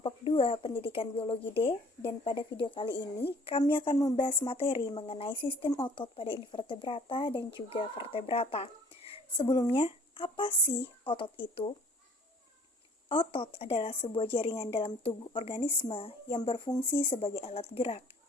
2 Pendidikan Biologi D, dan pada video kali ini kami akan membahas materi mengenai sistem otot pada invertebrata dan juga vertebrata. Sebelumnya, apa sih otot itu? Otot adalah sebuah jaringan dalam tubuh organisme yang berfungsi sebagai alat gerak.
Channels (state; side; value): normal; both; correlation 0.53